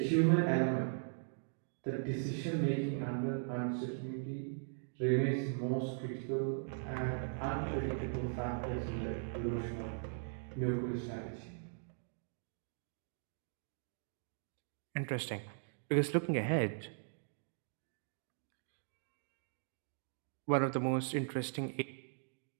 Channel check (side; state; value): left; silent; digital silence